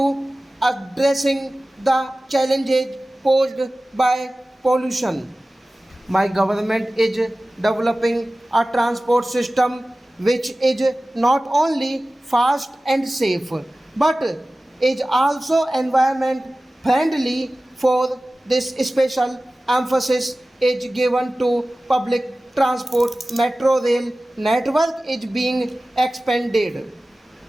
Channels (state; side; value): normal; both; correlation 0.97